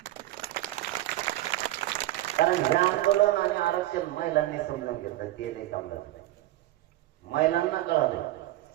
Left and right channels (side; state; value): left; quieter; 15.6 dB